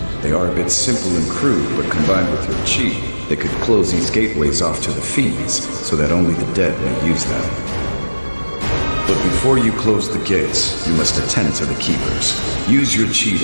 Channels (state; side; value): inverted; both; correlation -1.00